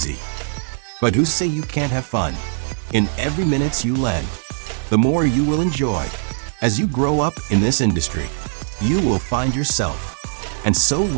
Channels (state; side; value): silent; left; digital silence